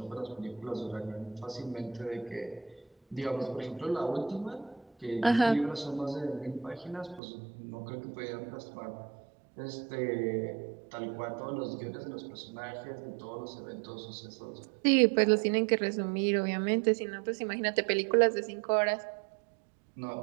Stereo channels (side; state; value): left; drops out; at 7.2 s